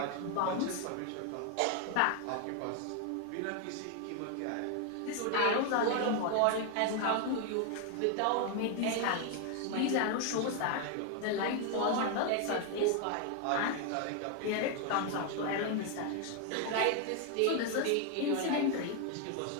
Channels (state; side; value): different; both; correlation 0.01